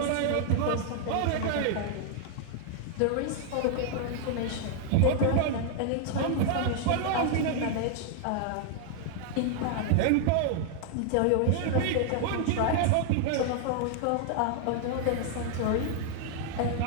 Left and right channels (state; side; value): different; both; correlation 0.00